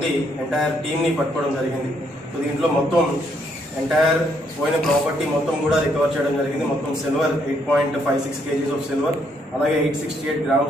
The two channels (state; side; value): normal; both; correlation 0.72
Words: ఎంటైర్ టీమ్ని పట్టుకోవడం జరిగింది. సో దీంట్లో మొత్తం ఎంటైర్ పోయిన ప్రాపర్టీ మొత్తం కూడా రికవర్ చేయడం జరిగింది. మొత్తం సిల్వర్ 8.56 kgs ఆఫ్ సిల్వర్, అలాగే 868